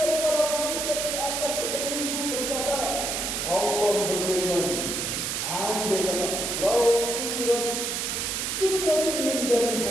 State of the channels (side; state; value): right; noise; hiss, 1 dB below the sound